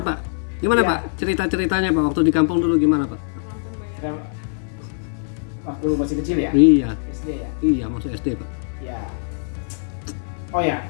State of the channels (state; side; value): silent; right; 57 dB below the other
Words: Pak, gimana Ya. Pak? Cerita-ceritanya Pak waktu di kampung dulu gimana Pak? Waktu masih kecil ya, Iya, SD ya. iya masuk SD Pak. Ya. Oh ya,